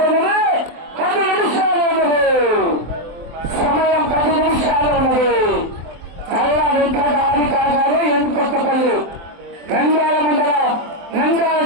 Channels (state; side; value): late; left; 23 ms